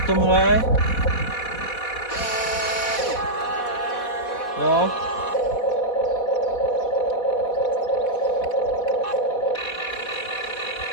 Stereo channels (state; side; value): late; right; 4.1 ms